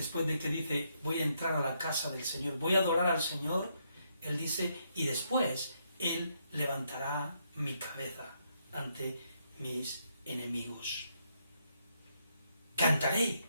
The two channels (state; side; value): inverted; both; correlation -0.76